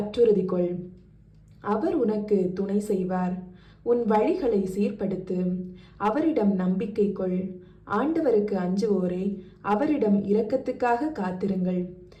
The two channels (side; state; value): both; identical; correlation 1.00